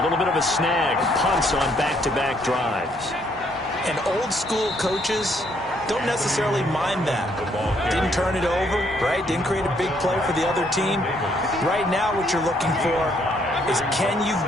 little bit of a snag. Punts on back-to-back drives. And old-school coaches don't necessarily mind that. Didn't turn it over, right? Didn't create a big play for the other team. Right now what you're looking for is, can you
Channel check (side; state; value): both; normal; correlation 0.69